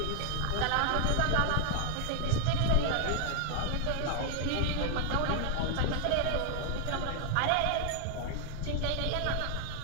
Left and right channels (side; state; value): both; different; correlation 0.00